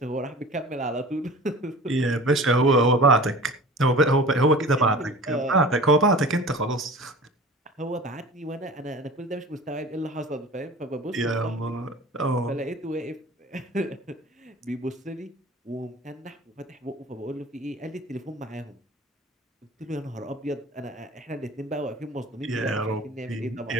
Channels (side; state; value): both; normal; correlation 0.40